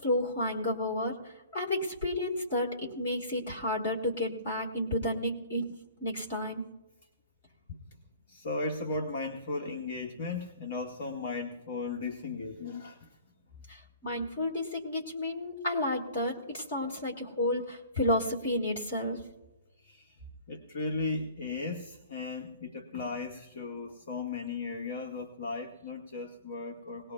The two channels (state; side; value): inverted; both; correlation -0.47